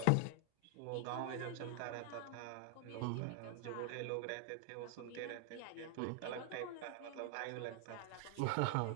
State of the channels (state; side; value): different; both; correlation 0.00